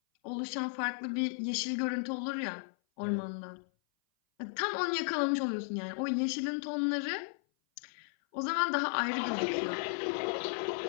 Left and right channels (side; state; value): right; silent; 55 dB below the other